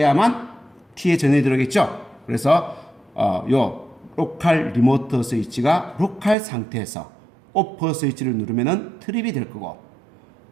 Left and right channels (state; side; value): drops out; left; at 6.4 s